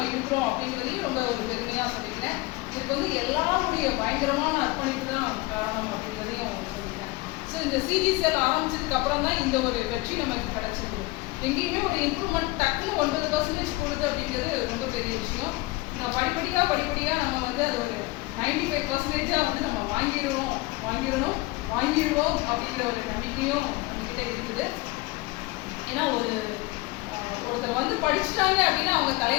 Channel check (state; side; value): quieter; right; 21.4 dB